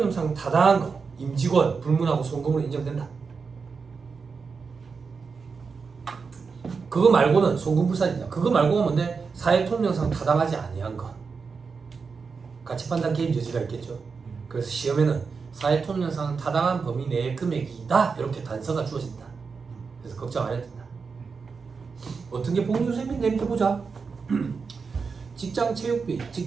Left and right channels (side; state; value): left; quieter; 5.1 dB